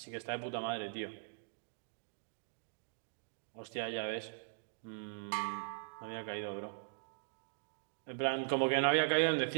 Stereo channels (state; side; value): silent; left; digital silence